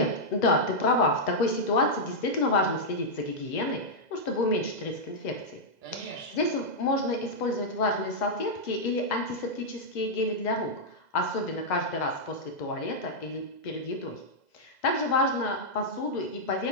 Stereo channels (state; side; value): late; right; 2.0 ms